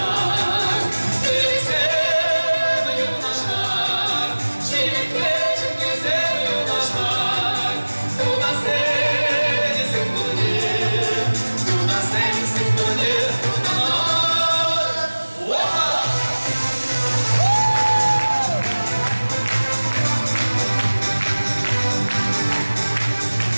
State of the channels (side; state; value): both; inverted; correlation -1.00